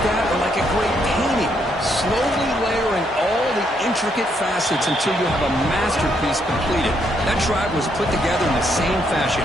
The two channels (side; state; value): both; normal; correlation 0.74